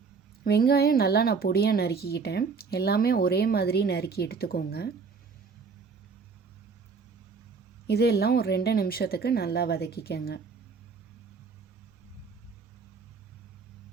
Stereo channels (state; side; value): quieter; left; 5.1 dB